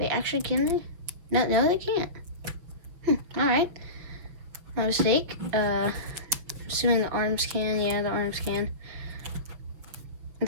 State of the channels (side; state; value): left; late; 6.3 ms